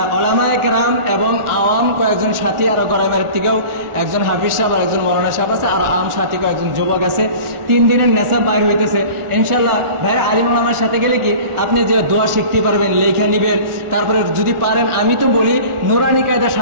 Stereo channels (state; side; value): late; left; 1.4 ms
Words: উলামায়ে কেরাম এবং আওয়াম কয়েকজন সাথী, আরো গরাইমার থেকেও একজন হাফিজ সাহেব আর একজন মৌলানা সাহেব আছে, আর আম সাথী কয়েকজন যুবক আছে। 3 দিনের নেশা বাইর হইতেছে ইনশাআল্লাহ। ভাই আলিম ওলামার সাথে গেলে কি আপনি যে দোয়া শিখতে পারবেন, লেখা নিবেন। তারপরে যদি পারেন, আমি তো বলি নুরানি কায়দার